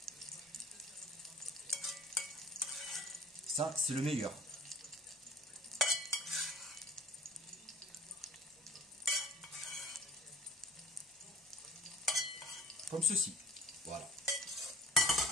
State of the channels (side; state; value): both; normal; correlation 0.47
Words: Ça, c'est le meilleur. Comme ceci. Voilà.